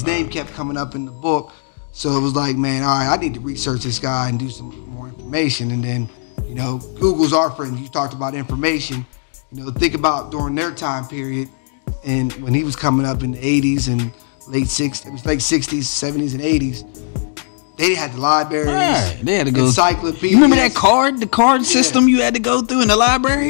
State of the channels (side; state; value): right; silent; digital silence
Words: name kept coming up in the book. So it was like, man, all right, I need to research this guy and do some more information. And then, Google's our friend. You talked about information. Think about during their time period, and when he was coming up in the 80s and late 60s, 70s, and 80s, they had the libraries. Right. They had to go. Encyclopedias. You remember the card system you had to go through in the